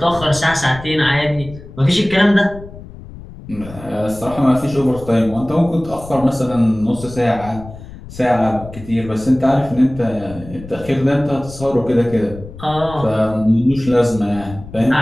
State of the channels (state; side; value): noise; left; rumble, 15 dB below the sound